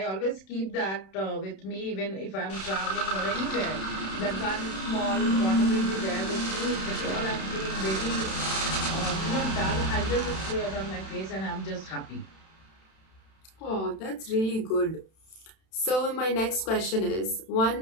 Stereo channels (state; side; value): late; right; 31 ms